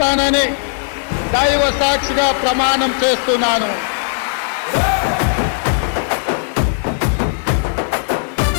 దైవ సాక్షిగా ప్రమాణం చేస్తున్నాను.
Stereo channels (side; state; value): right; silent; 62 dB below the other